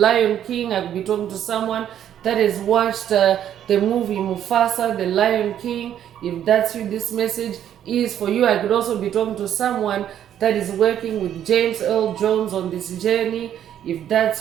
King. I could be talking to someone that has watched the movie Mufasa, the Lion King. If that's you, this message is for you. I could also be talking to someone that is working with James Earl Jones on this journey. If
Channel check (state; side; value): quieter; left; 10.3 dB